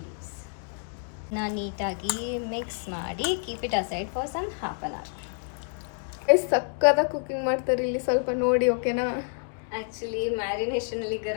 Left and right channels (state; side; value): silent; right; 59 dB below the other